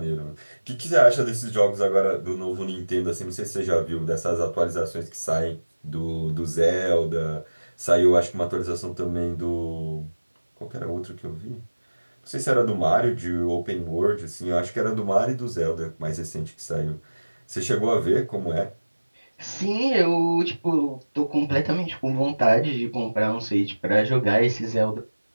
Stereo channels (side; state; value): both; inverted; correlation -1.00